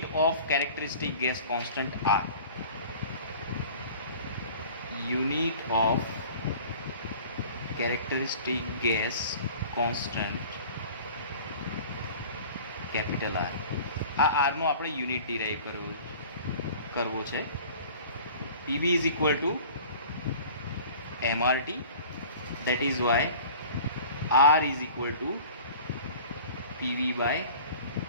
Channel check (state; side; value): inverted; both; correlation -0.44